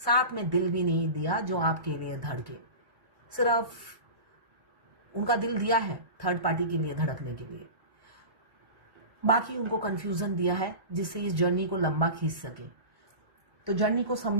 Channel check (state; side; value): late; left; 1.1 ms